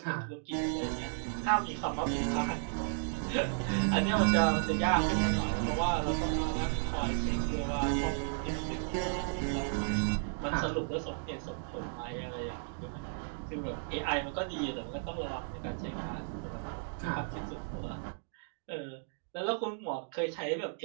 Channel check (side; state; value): left; silent; digital silence